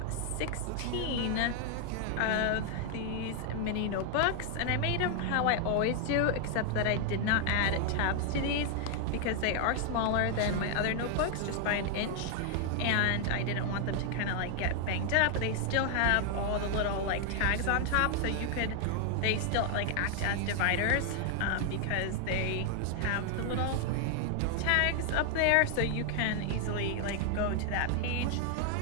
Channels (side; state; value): both; different; correlation 0.00